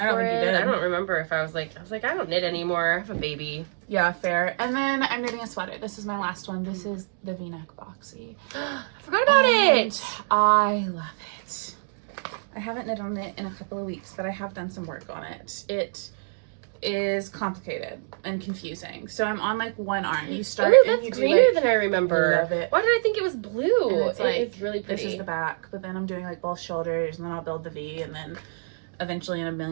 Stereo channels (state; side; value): silent; left; digital silence